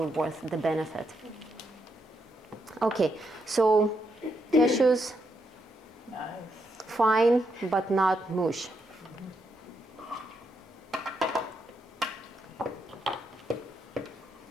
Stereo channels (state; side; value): normal; both; correlation 0.79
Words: worth the benefit. Okay, so cashews, Nice. fine, but not mush.